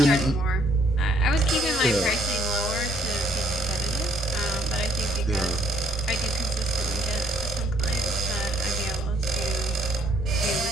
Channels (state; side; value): normal; both; correlation 0.66